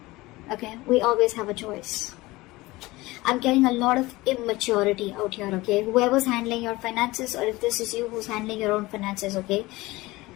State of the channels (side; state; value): right; quieter; 20.3 dB